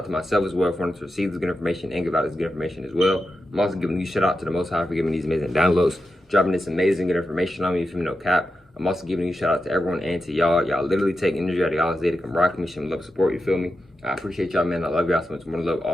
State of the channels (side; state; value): both; normal; correlation 0.89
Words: to myself as well for wanting to receive this good information and give out this good information as well. I'm also giving a shout out to the Most High for giving these amazing downloads, dropping this amazing good information on me from no cap. I'm also giving a shout out to everyone and to y'all. Y'all literally take energy out of y'all's day to come rock me, show me love, support, you feel me? I appreciate y'all, man. I love y'all so much. More love